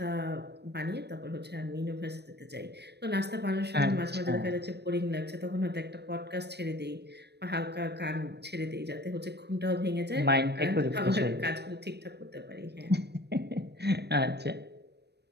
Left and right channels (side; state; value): left; late; 0.48 ms